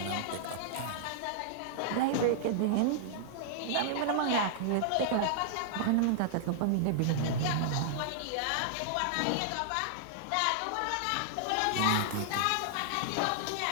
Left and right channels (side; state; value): both; different; correlation -0.01